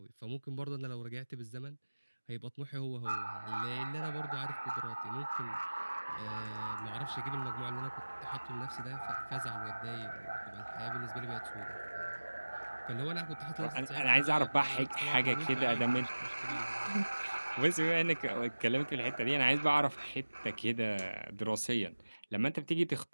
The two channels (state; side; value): inverted; both; correlation -1.00